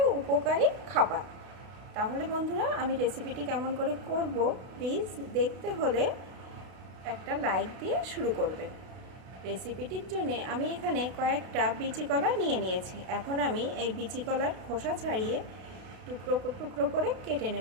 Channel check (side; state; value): left; late; 32 ms